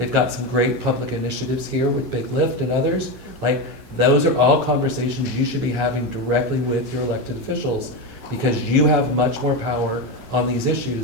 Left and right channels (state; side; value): normal; both; correlation 0.15